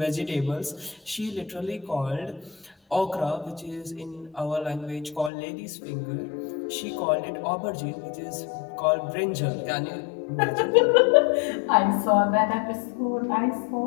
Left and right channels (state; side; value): drops out; right; at 5.3 s